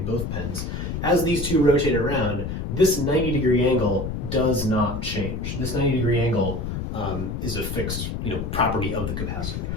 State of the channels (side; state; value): left; noise; rumble, 4 dB below the sound